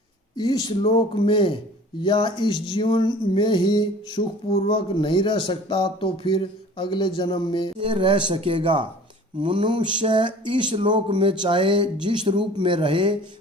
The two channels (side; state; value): both; normal; correlation 0.46